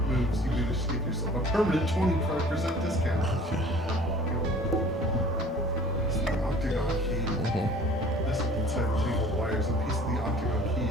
moves, you manage to get yourself a permanent 25% discount. It's the octagon key. Nestled inside the tangled wires, a piece of the octagon key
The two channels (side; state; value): both; normal; correlation 0.49